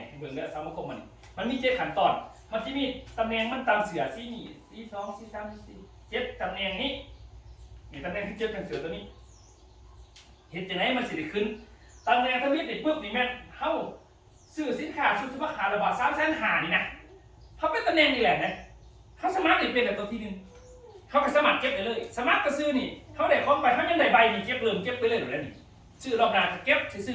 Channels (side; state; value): both; identical; correlation 1.00